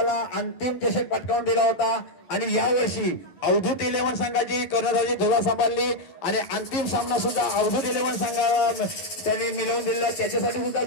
अंतिम चषक पटकावून दिला होता. आणि यावर्षी अवधूत 11 संघाची कर्णधाराची धुरा सांभाळली आणि अंतिम सामना सुद्धा अवधूत 11 संघाला त्यांनी मिळवून दिला. त्याच्यासाठी सुद्धा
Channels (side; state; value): right; late; 11 ms